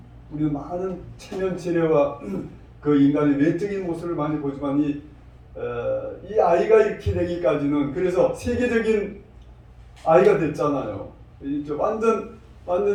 우리는 많은 체면체례와 그 인간의 외적인 모습을 많이 보지만 이 아이가 이렇게 되기까지는, 그래서 세계적인 아이가 됐잖아요. 이제 완전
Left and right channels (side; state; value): both; identical; correlation 1.00